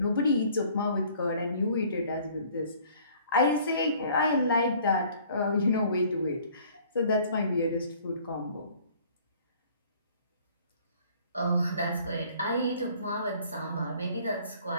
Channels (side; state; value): both; inverted; correlation -0.55